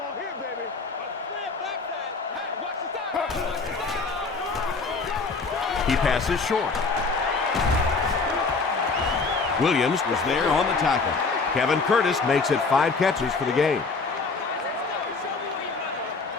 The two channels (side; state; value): right; quieter; 4.3 dB